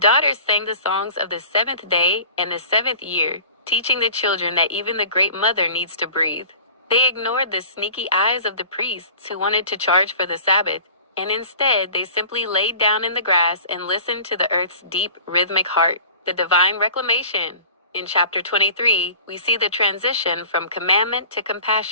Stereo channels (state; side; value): inverted; both; correlation -0.43